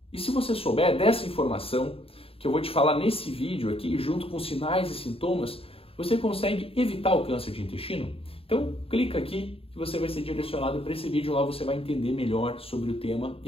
E se você souber dessa informação que eu vou te falar nesse vídeo aqui, junto com sinais e sintomas, você consegue evitar o câncer de intestino? Então, clica aqui que você vai ser direcionado para esse vídeo. Lá você vai entender melhor sobre o tema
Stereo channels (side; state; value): right; late; 0.27 ms